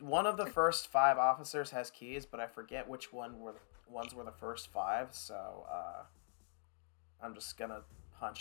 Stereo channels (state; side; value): silent; right; digital silence